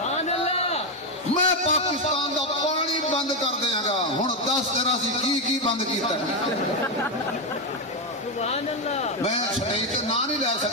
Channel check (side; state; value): both; normal; correlation 0.06